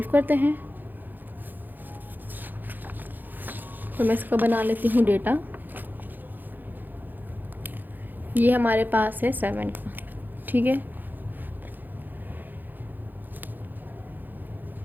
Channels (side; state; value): left; late; 0.088 ms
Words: करते हैं। तो मैं इसका बना लेती हूँ डेटा। ये हमारे पास है 7 का, ठीक है।